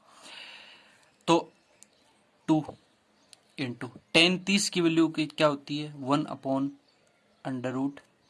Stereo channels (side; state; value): both; identical; correlation 1.00